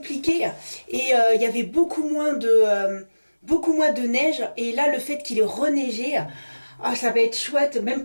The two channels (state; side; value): inverted; both; correlation -1.00